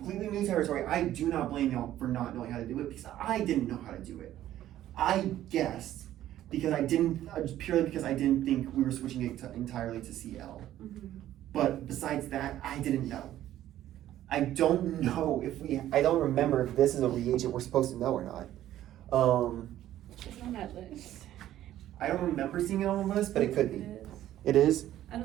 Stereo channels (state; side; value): quieter; left; 12.9 dB